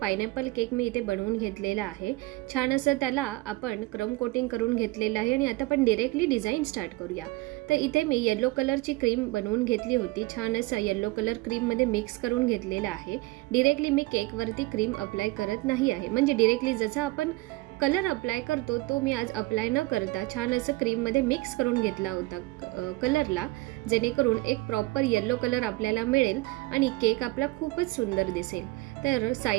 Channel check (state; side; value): quieter; left; 21.3 dB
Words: केक मी इथे बनवून घेतलेला आहे। छान असं त्याला आपण क्रम कोटिंग करून घेतलेलं आहे आणि आता आपण डायरेक्टली डिझाईन स्टार्ट करूया। तर इथे मी येलो कलरची क्रीम बनवून घेतली होती। छान असं येलो कलर क्रीममध्ये मिक्स करून घेतलेला आहे। डायरेक्टली मी केकवरती क्रीम अप्लाय करत नाही आहे, म्हणजे डायरेक्टली जसा आपण कलर अप्लाय करतो तो मी आज अप्लाय न करता छान असं क्रीममध्ये मिक्स करून घेतला होता कलरला, जेणेकरून एक प्रॉपर येलो कलर आपल्याला मिळेल आणि केक आपला खूपच सुंदर दिसेल। तर